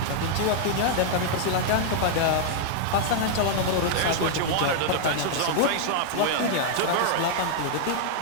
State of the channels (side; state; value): both; different; correlation -0.01